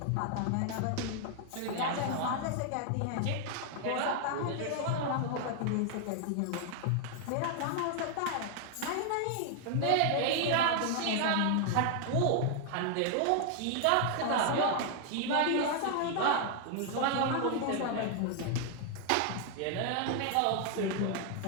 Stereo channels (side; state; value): both; different; correlation 0.00